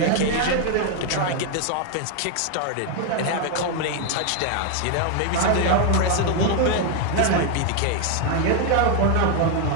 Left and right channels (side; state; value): both; different; correlation 0.01